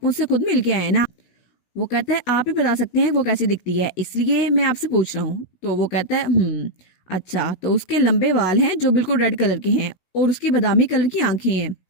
मुझसे खुद मिल के आए ना। वो कहता है आप ही बता सकते हैं वो कैसी दिखती है, इसलिए मैं आपसे पूछ रहा हूँ। तो वो कहता है अच्छा, तो उसके लंबे बाल हैं जो बिल्कुल रेड कलर के हैं, और उसकी बादामी कलर की आंखें हैं,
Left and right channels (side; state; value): right; late; 16 ms